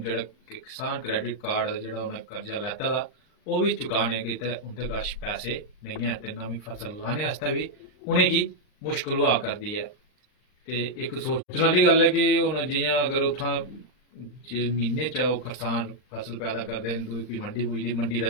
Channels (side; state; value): right; late; 39 ms